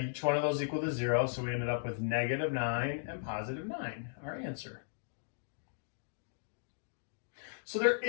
each one of those equal to 0, so we ended up with negative 9 and positive 9, our answer. So there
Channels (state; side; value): silent; right; digital silence